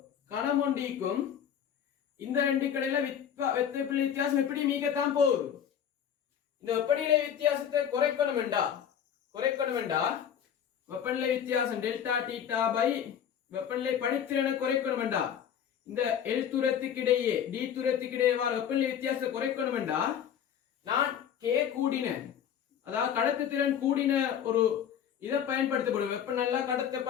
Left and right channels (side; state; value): right; quieter; 8.9 dB